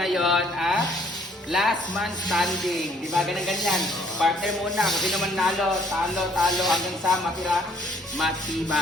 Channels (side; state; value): both; normal; correlation 0.63